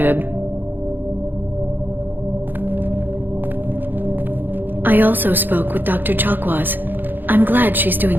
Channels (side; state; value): left; late; 0.092 ms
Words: I also spoke with Dr. Chakwas. I'm glad she's